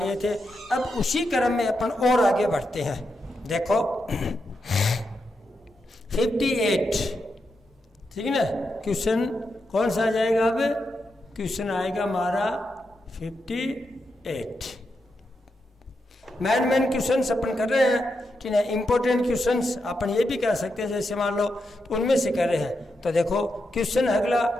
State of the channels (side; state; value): both; normal; correlation 0.85